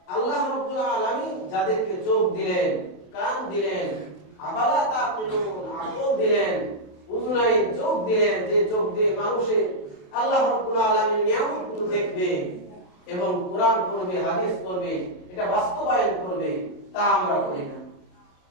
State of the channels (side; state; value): right; late; 28 ms